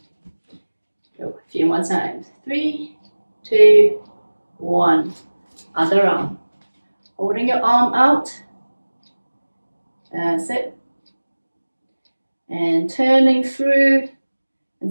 Go a few more times. 3, 2, 1. Other arm. Holding your arm out That's it. And turning through,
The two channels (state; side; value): inverted; both; correlation -1.00